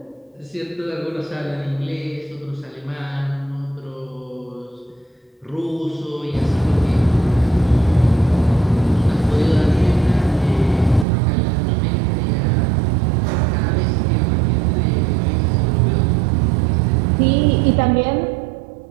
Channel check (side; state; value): left; drops out; at 11.1 s